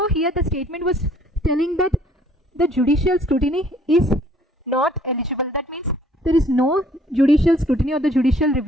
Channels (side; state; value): both; normal; correlation 0.59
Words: here the statement was telling that the judicial scrutiny is not eligible. That means there is no judicial scrutiny or the judicial